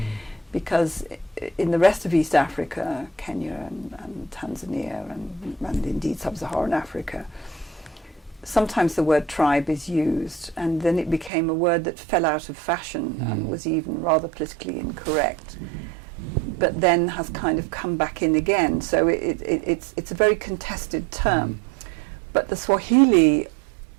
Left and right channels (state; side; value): drops out; left; at 11.3 s